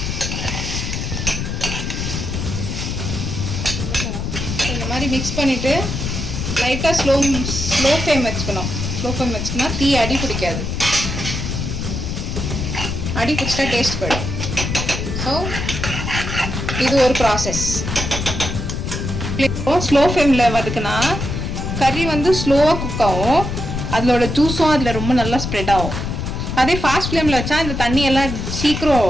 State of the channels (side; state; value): left; noise; rumble, 3 dB below the sound